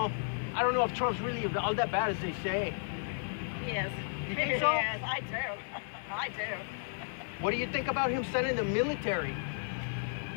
know if Trump's really all that bad as they say. He is. You think so? Yes, I do. I do. What do you think about him sending the military?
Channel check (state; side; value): silent; right; digital silence